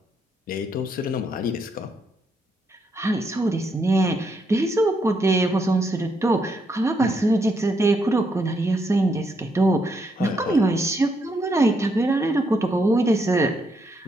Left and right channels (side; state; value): both; normal; correlation 0.77